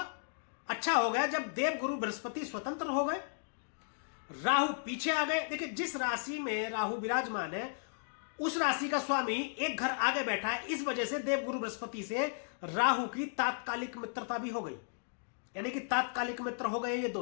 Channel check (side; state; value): right; silent; digital silence